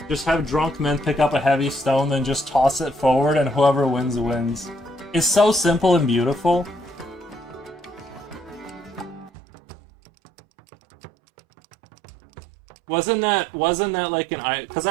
just have drunk men pick up a heavy stone, then just toss it forward, and whoever wins wins. It's so simple and beautiful. Wasn't that like an because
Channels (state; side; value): drops out; left; at 9.3 s